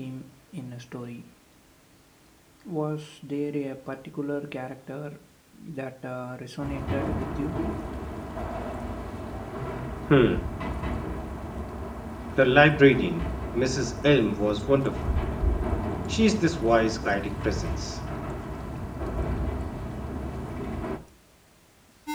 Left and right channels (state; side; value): identical; both; correlation 1.00